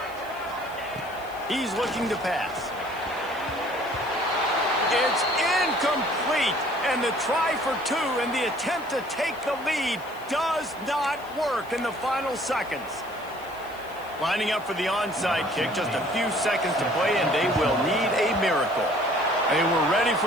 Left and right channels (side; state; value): left; noise; hiss, 23 dB below the sound